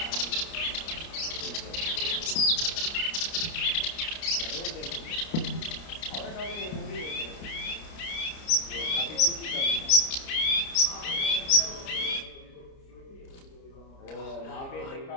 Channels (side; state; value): right; late; 30 ms